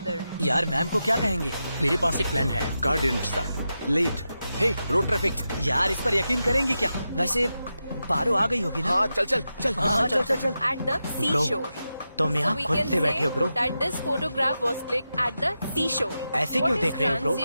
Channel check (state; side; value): inverted; both; correlation -0.90